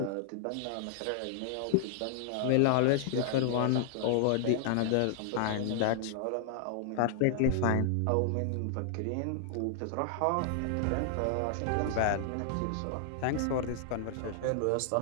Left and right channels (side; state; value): both; different; correlation 0.00